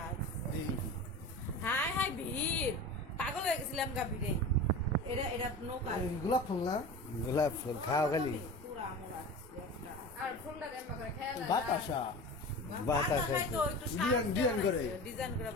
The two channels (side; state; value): both; normal; correlation 0.32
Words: হাই হাই ভিড়, পাগল হয়ে গেছিলাম গা ভিড়ে। এটা এটা নৌকা গোলাপ ফুল না গোলাপ ফুল খাও খালি পুরা আমরা একটা আর ফুলটা দেন করে খেয়াল বাতাসা বাতাসা তো একটু ডিজাইন করে। ডিজাইন করে